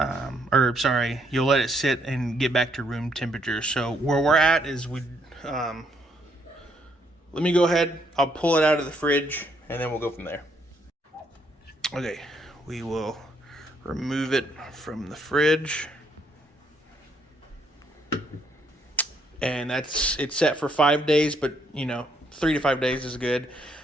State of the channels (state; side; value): normal; both; correlation 0.71